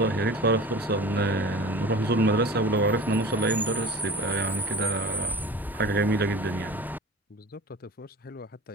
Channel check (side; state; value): both; normal; correlation 0.37